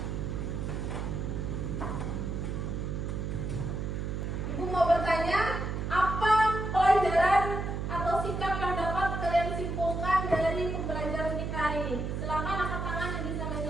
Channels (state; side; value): noise; right; hum, 3 dB below the sound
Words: Ibu mau bertanya, apa pelajaran atau sikap yang dapat kalian simpulkan dari pembelajaran kita hari ini? Silakan angkat tangan yang bisa